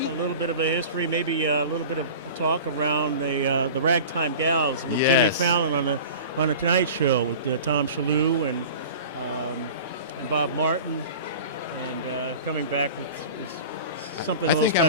A little bit of a history, maybe a little bit of a talk around the Ragtime Gals with Jimmy Fallon on the Tonight Show with Tom Shalhoub and Bob Martin, and coming back with something a little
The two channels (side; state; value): both; inverted; correlation -0.37